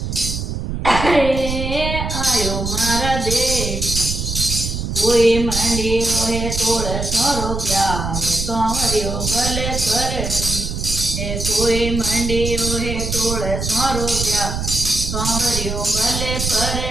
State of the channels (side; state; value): right; noise; rumble, 4 dB below the sound